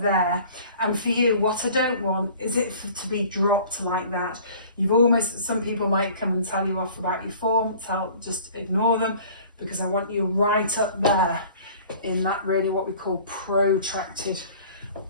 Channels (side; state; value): both; inverted; correlation -0.47